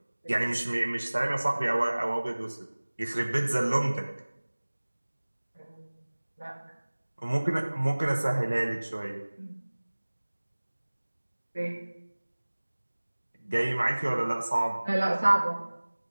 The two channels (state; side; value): inverted; both; correlation -1.00